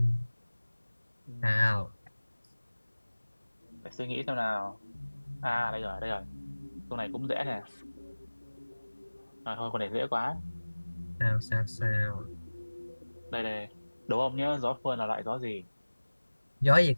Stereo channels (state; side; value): inverted; both; correlation -1.00